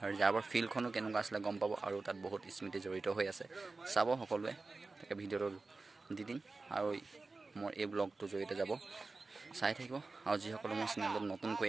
ৰিজাৰ্ভৰ ফিল্ডখনো কেনেকুৱা আছিলে গম পাব আৰু তাত বহুত স্মৃতি জড়িত হৈ আছে চাব সকলোৱে তাকে ভিডিঅ'টো দি দিম আৰু মোৰ এই ব্লগটোৰ জৰিয়তে যাব চাই থাকিব আৰু যিসকলে মোৰ চেনেলত নতুনকৈ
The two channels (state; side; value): quieter; left; 3.7 dB